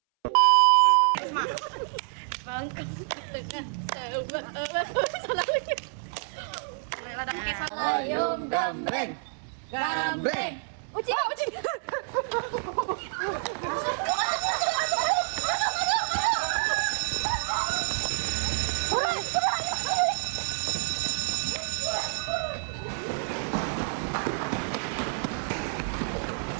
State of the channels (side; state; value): left; silent; 59 dB below the other